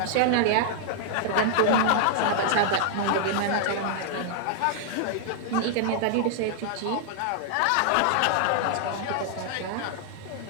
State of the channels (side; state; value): both; different; correlation -0.01